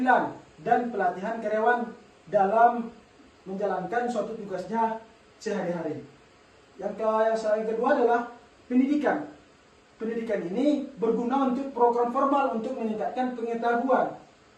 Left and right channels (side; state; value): both; identical; correlation 1.00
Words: dan pelatihan karyawan dalam menjalankan suatu tugasnya sehari-hari. Yang kedua adalah pendidikan. Pendidikan ini berguna untuk program formal untuk meningkatkan pengetahuan